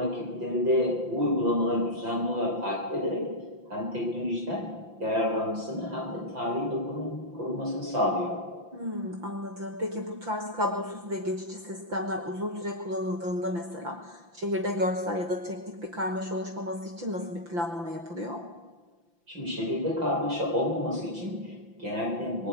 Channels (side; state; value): left; late; 5.9 ms